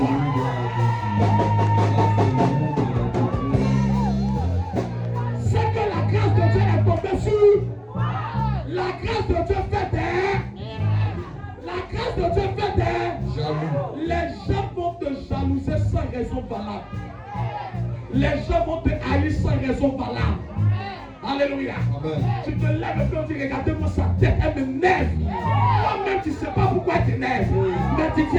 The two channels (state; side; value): identical; both; correlation 1.00